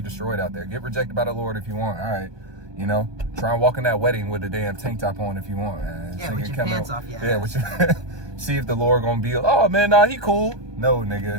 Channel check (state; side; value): late; left; 1.2 ms